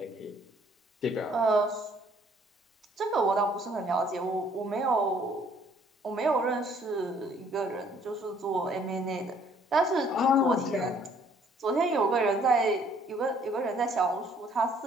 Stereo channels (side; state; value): both; normal; correlation 0.61